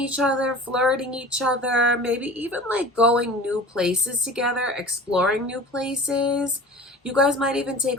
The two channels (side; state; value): both; normal; correlation 0.40